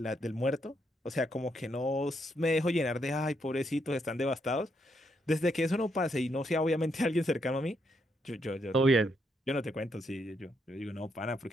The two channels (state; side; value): normal; both; correlation 0.77